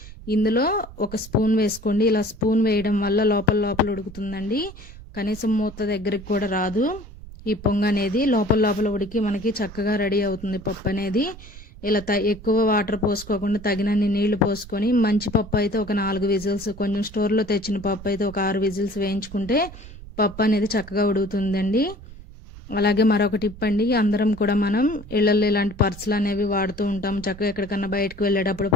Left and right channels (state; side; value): noise; right; rumble, 16 dB below the sound